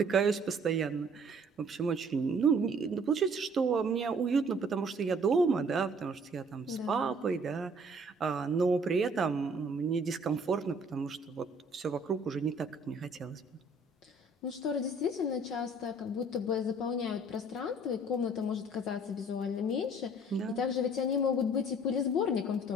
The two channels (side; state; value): both; normal; correlation 0.57